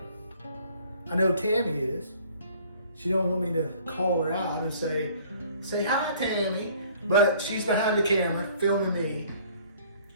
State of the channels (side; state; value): both; inverted; correlation -0.55